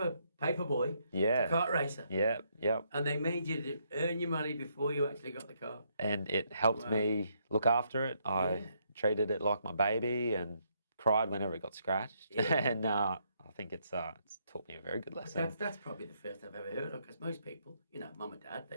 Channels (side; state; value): both; inverted; correlation -0.74